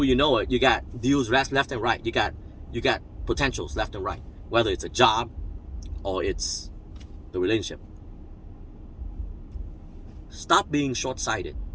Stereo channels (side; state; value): both; identical; correlation 1.00